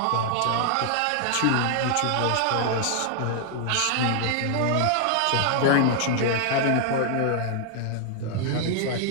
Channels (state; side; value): different; both; correlation 0.00